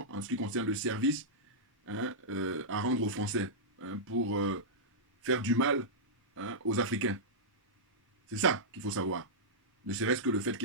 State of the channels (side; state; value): both; normal; correlation -0.12